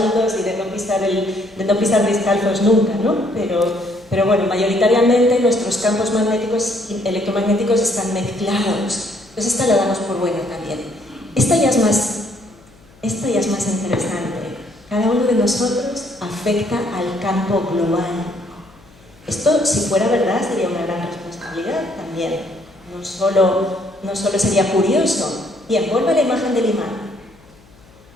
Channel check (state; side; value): noise; left; hum, 27 dB below the sound